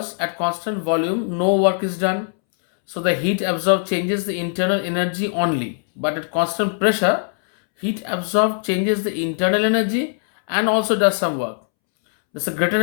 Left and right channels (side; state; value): right; silent; 65 dB below the other